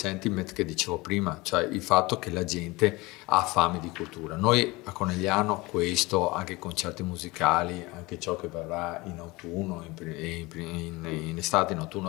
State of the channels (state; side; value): quieter; right; 22.6 dB